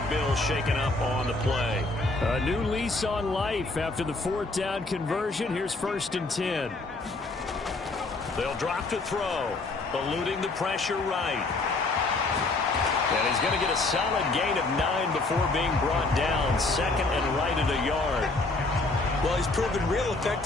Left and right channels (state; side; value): quieter; right; 3.3 dB